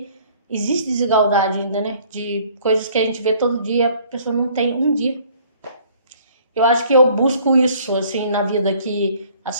existe desigualdade ainda, né? De coisas que a gente vê todo dia, a pessoa não tem um dia. Eu acho que eu busco isso, assim, na vida, que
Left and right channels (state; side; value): inverted; both; correlation -0.57